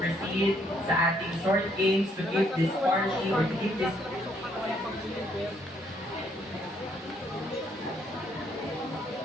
sa ating short games to keep this party or to keep this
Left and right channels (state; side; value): normal; both; correlation 0.69